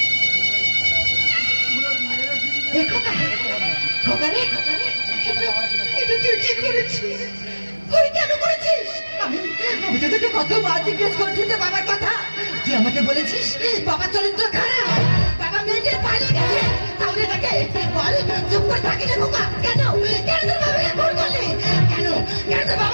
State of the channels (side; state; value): both; inverted; correlation -1.00